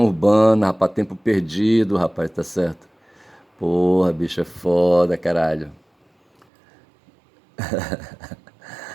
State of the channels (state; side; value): drops out; left; at 6.5 s